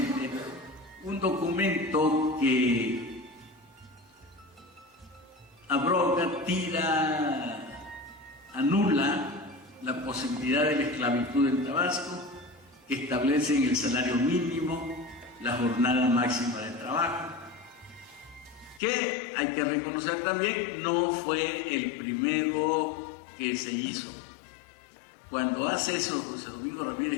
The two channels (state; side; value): drops out; right; at 18.8 s